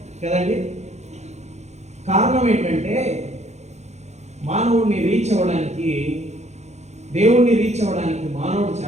కదండి. కారణం ఏంటంటే మానవుడిని రీచ్ అవ్వడానికి, దేవుణ్ణి రీచ్ అవ్వడానికి మానవుడు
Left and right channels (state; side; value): late; left; 0.32 ms